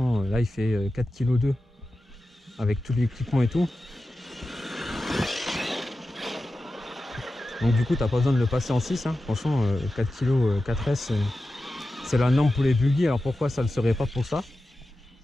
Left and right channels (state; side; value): normal; both; correlation 0.93